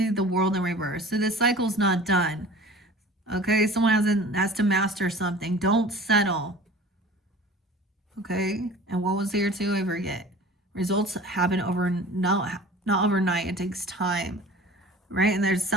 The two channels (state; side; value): normal; both; correlation 0.43